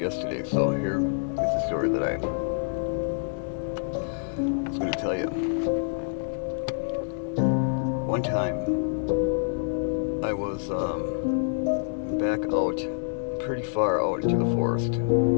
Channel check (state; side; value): silent; right; 60 dB below the other